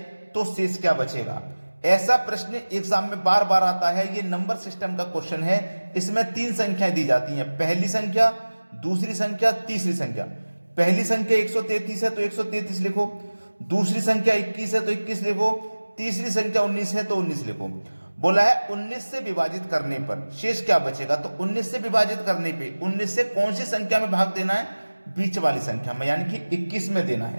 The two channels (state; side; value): inverted; both; correlation -1.00